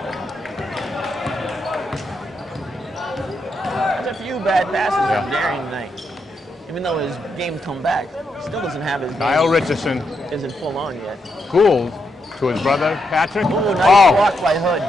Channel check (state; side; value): normal; both; correlation 0.81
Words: There's a few bad passes Yeah. from Darian tonight. Even though his game's come back, still doesn't have his Kyle game. Richardson, Isn't full on yet. Gould to his brother Patrick. Ooh, nice Oh, block by Hood.